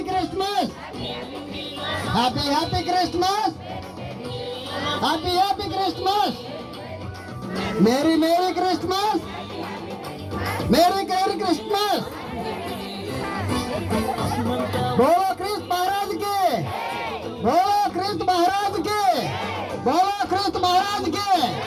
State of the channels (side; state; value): both; identical; correlation 1.00